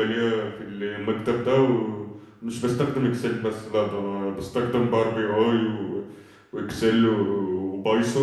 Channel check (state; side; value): identical; both; correlation 1.00